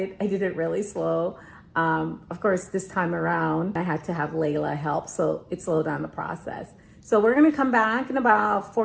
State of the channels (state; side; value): identical; both; correlation 1.00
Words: I did it really slow. Of course, this time around, I had to have Layla help, so it slowed down the process. So we're gonna come back in about